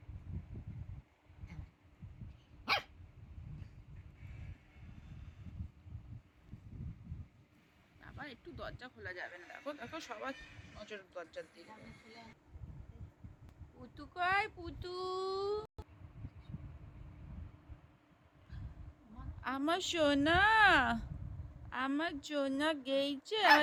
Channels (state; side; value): identical; both; correlation 1.00